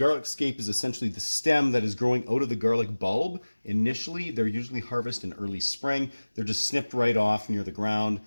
scape is essentially the stem that is growing out of the garlic bulb. Initially, they're usually harvested in early spring. They're just snipped right off near the ground,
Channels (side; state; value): both; inverted; correlation -1.00